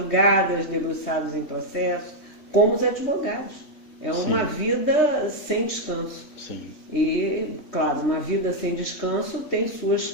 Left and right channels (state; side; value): late; right; 3.1 ms